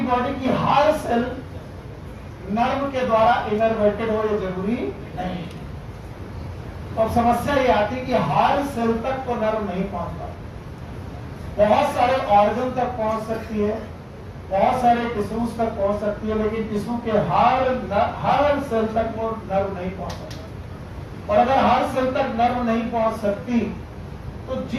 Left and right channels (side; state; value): both; identical; correlation 1.00